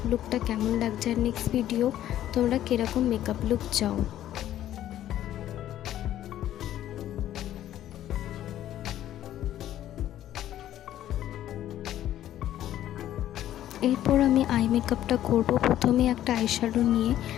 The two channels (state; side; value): quieter; right; 12.4 dB